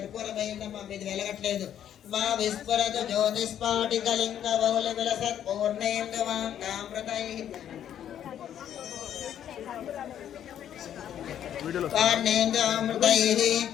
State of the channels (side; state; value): right; quieter; 10.2 dB